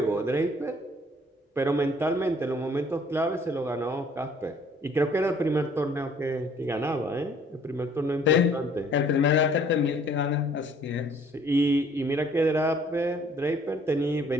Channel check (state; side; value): normal; both; correlation 0.58